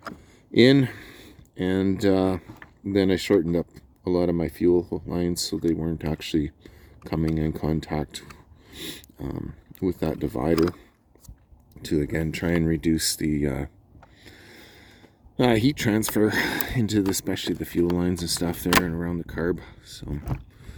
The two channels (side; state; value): both; identical; correlation 1.00